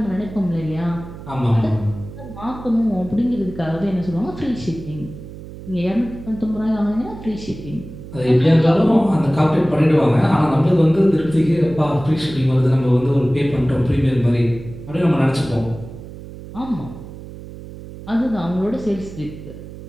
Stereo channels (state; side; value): noise; right; hum, 14 dB below the sound